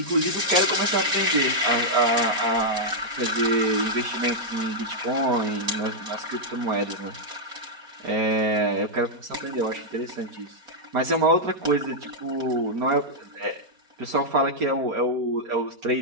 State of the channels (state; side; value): late; left; 4.3 ms